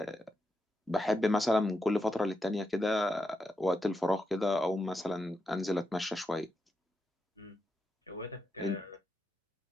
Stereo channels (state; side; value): normal; both; correlation 0.85